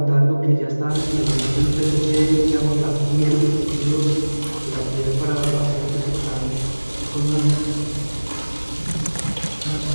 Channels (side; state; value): both; inverted; correlation -1.00